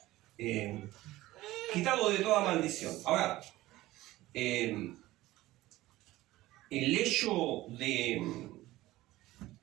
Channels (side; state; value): left; quieter; 17.1 dB